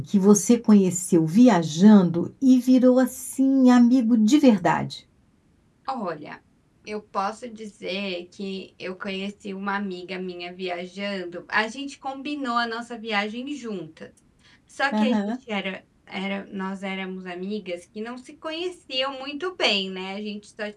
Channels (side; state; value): both; identical; correlation 1.00